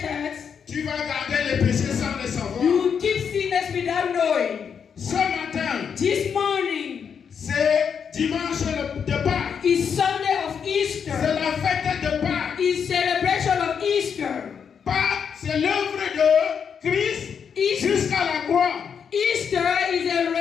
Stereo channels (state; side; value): quieter; right; 7.0 dB